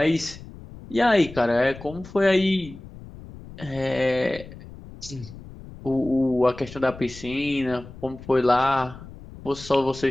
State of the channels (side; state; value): left; noise; rumble, 16 dB below the sound